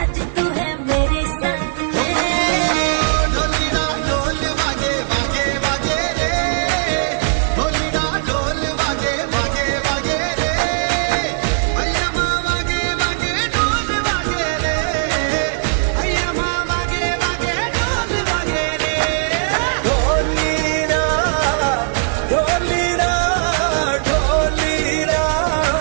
तू है मेरे संग ढोलीना ढोल वागे वागे वागे रे ढोलीना ढोल वागे वागे वागे रे भैया माँ वागे वागे ढोल वागे रे भैया माँ वागे वागे ढोल वागे रे ढोलीरा ढोलीरा ढोलीरा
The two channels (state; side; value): silent; left; digital silence